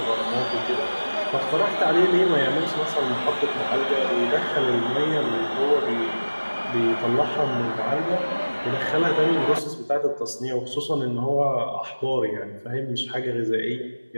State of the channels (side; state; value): both; inverted; correlation -1.00